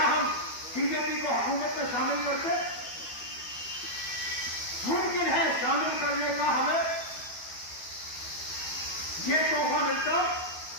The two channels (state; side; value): late; right; 12 ms